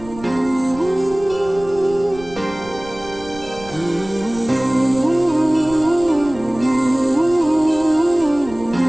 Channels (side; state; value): right; noise; rumble, 18 dB below the sound